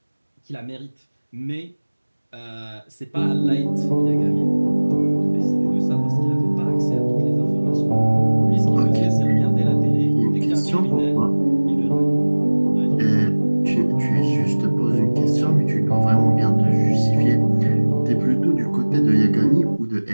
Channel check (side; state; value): both; inverted; correlation -1.00